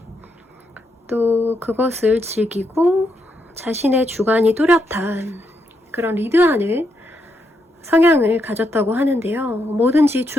또 그것을 즐기고 자신의 주관이 뚜렷한 그런 리드하는 성향을 가졌다고 하는데요. 뭐든지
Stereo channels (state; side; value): normal; both; correlation 0.80